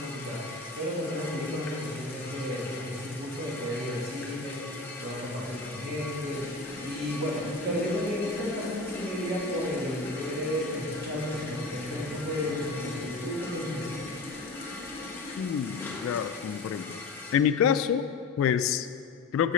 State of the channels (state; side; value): quieter; right; 3.5 dB